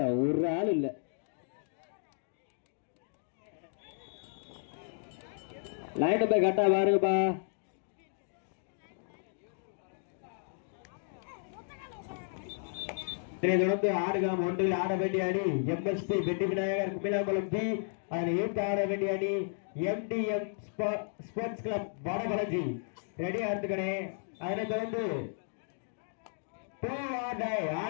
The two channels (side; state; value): right; silent; digital silence